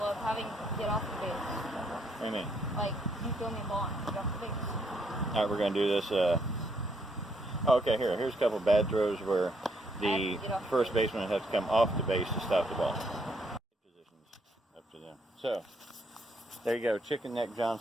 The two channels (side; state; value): both; normal; correlation 0.72